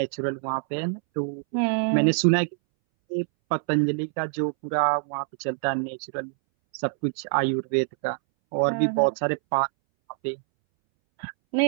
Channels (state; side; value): silent; left; 61 dB below the other